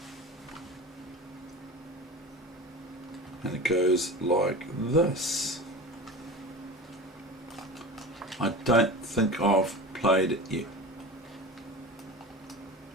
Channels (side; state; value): both; normal; correlation 0.32